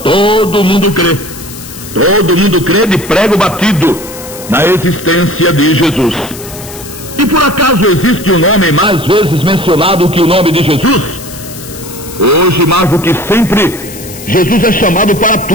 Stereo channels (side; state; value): left; noise; hiss, 14 dB below the sound